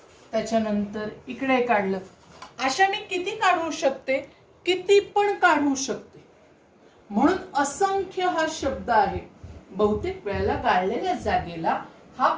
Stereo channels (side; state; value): both; identical; correlation 1.00